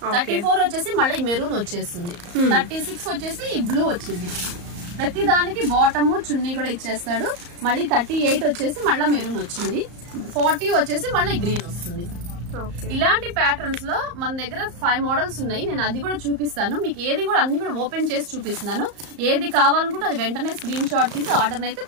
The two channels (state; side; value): late; left; 34 ms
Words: 34 వచ్చేసి మళ్ళీ మెరూన్ వచ్చేస్తుంది. 36 వచ్చేసి ఈ బ్లూ వచ్చింది. ప్రతి దానికి బాటమ్ చున్నీ కూడా ఇచ్చేస్తాడు. మళ్ళీ 38 వచ్చేసి మళ్ళీ మెరూన్ వచ్చింది. 40 వచ్చేసి మళ్ళీ గ్రీన్ వస్తుంది. ఇలాంటి ప్యాటర్న్స్ లో మన దగ్గర 5 మోడల్స్ ఉన్నాయి. నేను అది కూడా చూపిస్తాను మీకు. ఏది కూడా అన్ని కూడా ఓపెన్ చేసి చూపిస్తున్నాను. ఏది కావాలనుకుంటే అది వెంటనే స్క్రీన్ షాట్ తీసి ఆర్డర్ అయితే